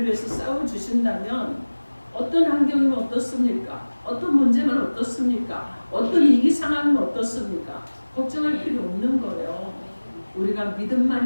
위해서 싸워주신다면 어떤 환경이면 어떻습니까? 어떤 문제면 어떻습니까? 어떤 위기 상황이면 어떻습니까? 걱정할 필요 없는 거예요. 우리가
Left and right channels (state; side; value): inverted; both; correlation -1.00